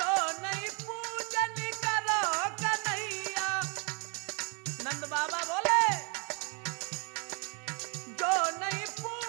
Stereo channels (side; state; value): left; quieter; 34.8 dB